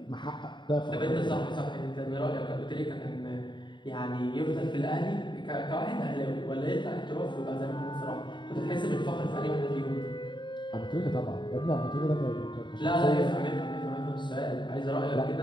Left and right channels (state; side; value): late; right; 0.23 ms